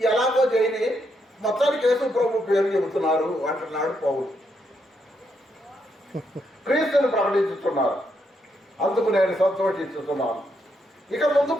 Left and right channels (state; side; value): normal; both; correlation 0.78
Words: ఎలాగో చేయని, మొత్తానికి యేసు ప్రభు పేరు చెబుతున్నారు అంటున్నాడు పౌలు. క్రీస్తుని ప్రకటించుతున్నారు. అందుకు నేను సంతోషిస్తున్నాను. ఇక